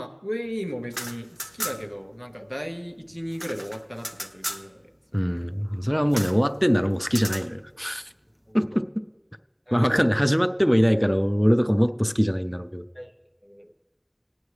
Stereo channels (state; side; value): identical; both; correlation 1.00